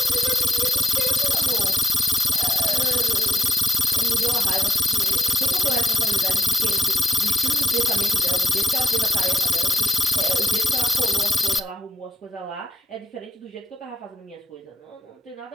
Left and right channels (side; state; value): both; normal; correlation 0.77